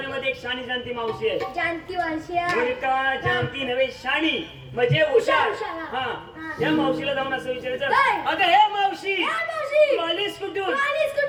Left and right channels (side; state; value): both; identical; correlation 1.00